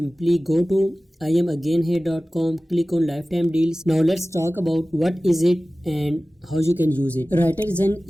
go to IamAgainHere.com, click on lifetime deals. Now let's talk about what is it and how you can use it. WriterZen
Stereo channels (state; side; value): normal; both; correlation 0.97